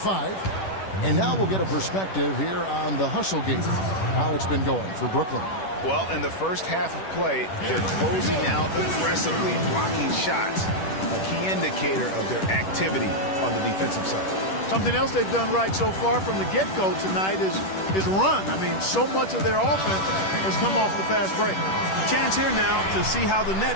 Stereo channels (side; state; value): right; late; 10 ms